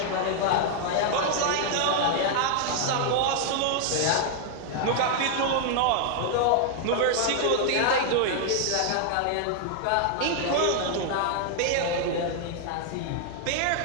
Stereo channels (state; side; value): different; both; correlation 0.00